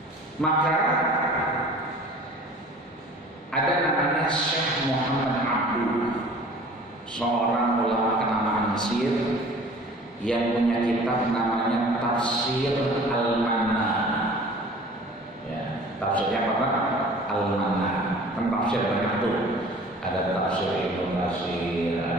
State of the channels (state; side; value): normal; both; correlation 0.46